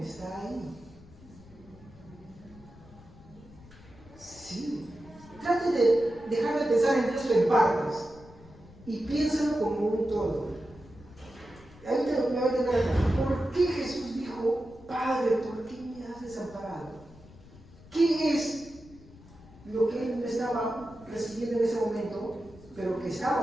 ahí. Sí. Trate de dejar de pensar en Dios en partes y piénsalo como un todo. Ahí me va a entender acá. ¿Por qué Jesús dijo, Padre, por qué me has desamparado? ¿Qué es lo que Él no estaba recibiendo en ese momento, pero que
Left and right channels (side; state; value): left; noise; rumble, 22 dB below the sound